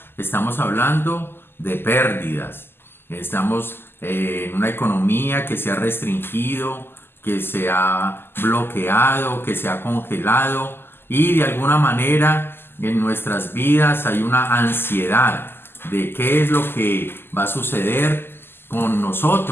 estamos hablando de pérdidas. Estamos en una economía que se ha restringido, que se ha bloqueado, que se ha congelado, y de alguna manera en nuestras vidas hay una ansiedad de qué es lo que va a suceder con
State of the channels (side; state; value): right; late; 0.11 ms